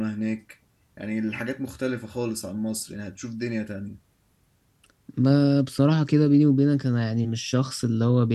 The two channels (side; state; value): both; identical; correlation 1.00